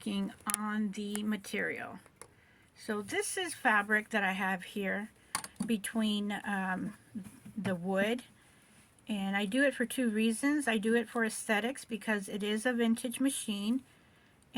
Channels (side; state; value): both; identical; correlation 1.00